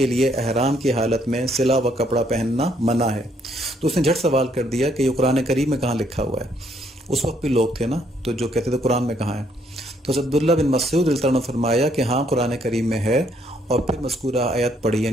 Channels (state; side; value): normal; both; correlation 0.69